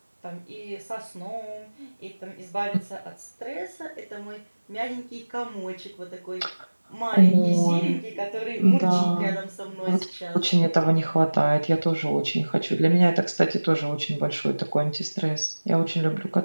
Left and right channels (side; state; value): both; inverted; correlation -1.00